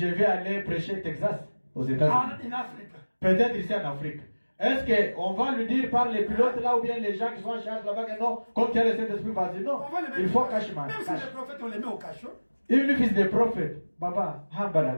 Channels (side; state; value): both; inverted; correlation -1.00